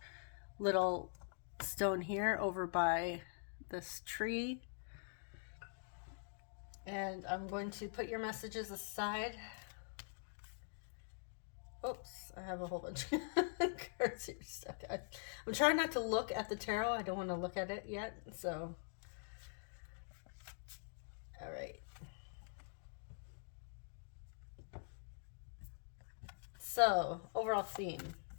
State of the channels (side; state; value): right; silent; digital silence